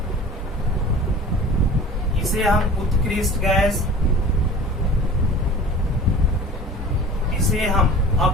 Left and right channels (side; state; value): both; normal; correlation 0.41